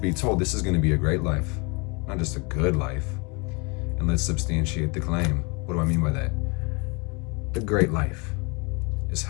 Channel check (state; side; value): quieter; right; 30.4 dB